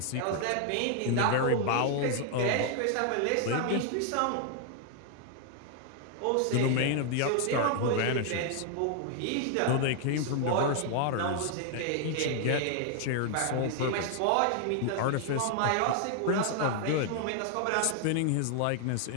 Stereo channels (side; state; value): both; different; correlation 0.00